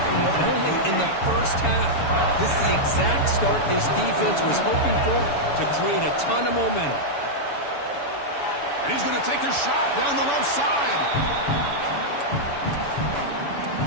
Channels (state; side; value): late; right; 7.0 ms